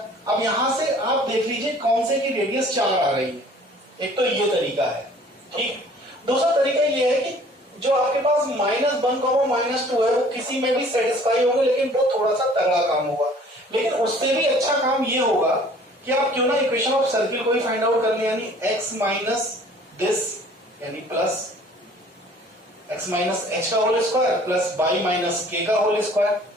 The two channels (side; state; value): both; normal; correlation 0.52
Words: अब यहां से आप देख लीजिए कौन से की रेडियस 4 आ रही है। एक तो ये तरीका है, ठीक। दूसरा तरीका ये है कि जो आपके पास -1, -2 है वो किसी में भी सेटिस्फाई होगा, लेकिन वो थोड़ा सा तगड़ा काम होगा। लेकिन उससे भी अच्छा काम ये होगा कि आप क्यों ना इक्वेशन ऑफ सर्किल को ही फाइंड आउट कर लें, यानी x माइनस दिस, यानी प्लस x माइनस h का whole square plus y minus k का whole square